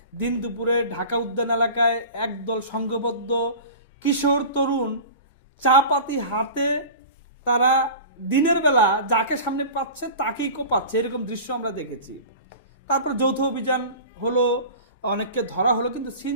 দিন দুপুরে ঢাকা উদ্যান এলাকায় একদল সংঘবদ্ধ কিশোর তরুণ চা পাতি হাতে তারা দিনের বেলা যাকে সামনে পাচ্ছে তাকেই কোপাচ্ছে, এরকম দৃশ্য আমরা দেখেছি। তারপর যৌথ অভিযান হলো, অনেককে ধরা হলো, কিন্তু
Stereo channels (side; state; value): both; inverted; correlation -0.36